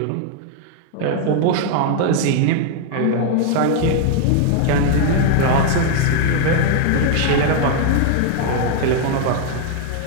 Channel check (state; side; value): different; both; correlation 0.00